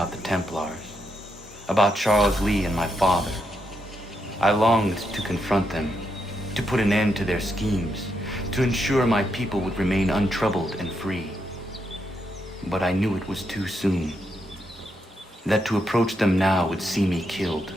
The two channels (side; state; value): both; normal; correlation 0.81